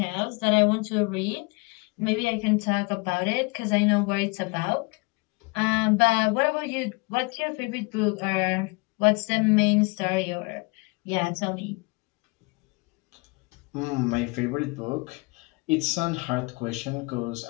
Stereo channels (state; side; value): quieter; right; 28.3 dB